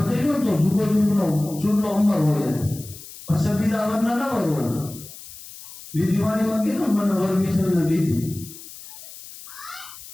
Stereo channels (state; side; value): noise; left; hiss, 16 dB below the sound